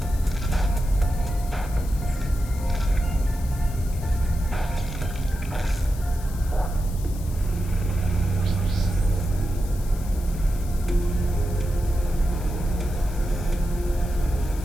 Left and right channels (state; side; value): noise; left; hiss, 18 dB below the sound